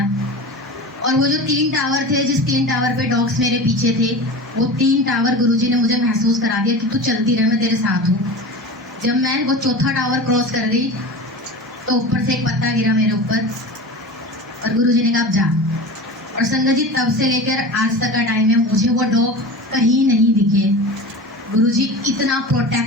और वो जो 3 टावर थे, जिस 3 टावर पे डॉग्स मेरे पीछे थे, वो 3 टावर गुरुजी ने मुझे महसूस करा दिया कि तू चलती रह, मैं तेरे साथ हूँ। जब मैं वो चौथा टावर क्रॉस कर गई तो ऊपर से एक पत्ता गिरा मेरे ऊपर, और गुरुजी ने कहा अब जा। और संगत जी, तब से लेकर आज तक का टाइम है, मुझे वो डॉग कहीं नहीं दिखे। गुरुजी इतना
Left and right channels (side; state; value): both; normal; correlation 0.31